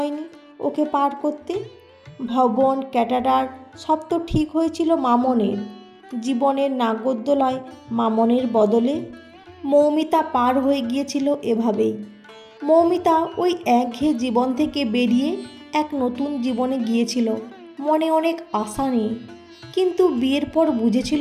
ওকে পার করতে। ভবন ক্যাটারার সব তো ঠিক হয়েছিল মামনের। জীবনের নাগরদোলায় মামনের বদলে মৌমিতা পার হয়ে গিয়েছিল এভাবেই। মৌমিতা ওই একঘেয়ে জীবন থেকে বেরিয়ে এক নতুন জীবনে গিয়েছিল, মনে অনেক আশা নিয়ে। কিন্তু বিয়ের পর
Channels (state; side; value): identical; both; correlation 1.00